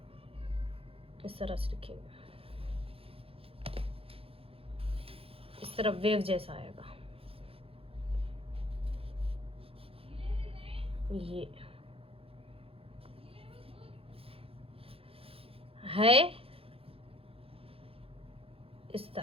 इस तरह से लिखेंगे, इस तरफ वेव जैसा आएगा। ये है इस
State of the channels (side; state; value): left; late; 0.27 ms